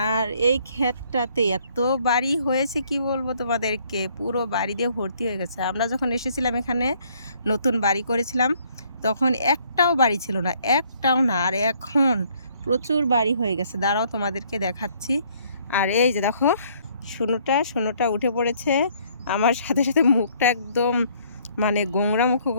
আর এই ক্ষেতটাতে এত বাড়ি হয়েছে কি বলবো তোমাদেরকে, পুরো বাড়ি দিয়ে ভর্তি হয়ে গেছে। আমরা যখন এসেছিলাম এখানে নতুন বাড়ি করেছিলাম, তখন একটাও বাড়ি ছিল না, একটাও না। আর এখন প্রচুর বাড়ি হয়ে গেছে। দাঁড়াও তোমাদেরকে দেখাচ্ছি। আর এই যে দেখো, শুনুটা উঠে পড়েছে আমার সাথে সাথে, মুখটা একদম মানে গোংরা মুখ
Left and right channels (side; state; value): both; inverted; correlation -0.64